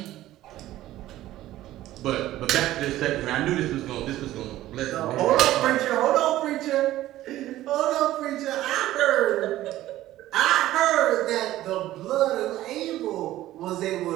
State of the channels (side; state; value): left; quieter; 14.8 dB